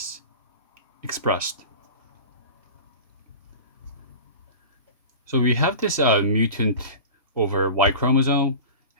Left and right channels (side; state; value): both; inverted; correlation -0.34